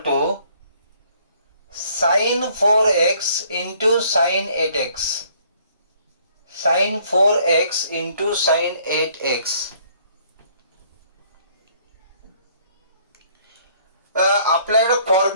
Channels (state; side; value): inverted; both; correlation -0.62